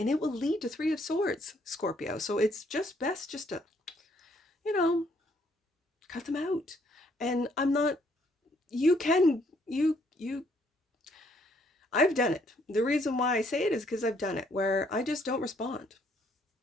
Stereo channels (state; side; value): normal; both; correlation 0.68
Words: it will lead to Three of Swords, Scorpio. So it's just best just to, cut them out. And I'm not, I've done it. The reason why I say it is because I've done it, where I just don't respond.